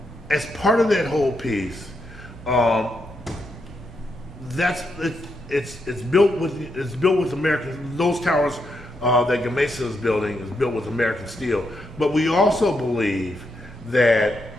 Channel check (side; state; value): both; normal; correlation 0.81